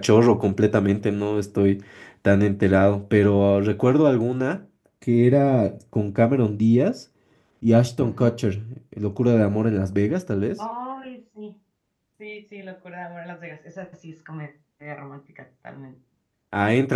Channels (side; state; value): both; identical; correlation 1.00